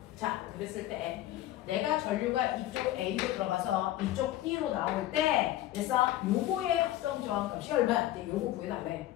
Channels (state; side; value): quieter; right; 14.5 dB